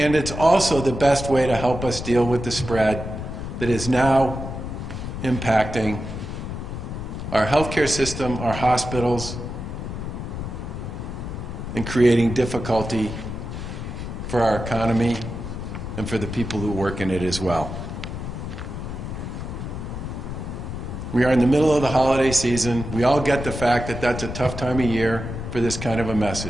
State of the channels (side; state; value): left; noise; rumble, 7 dB below the sound